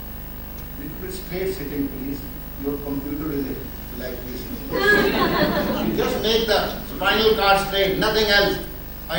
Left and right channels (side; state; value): both; identical; correlation 1.00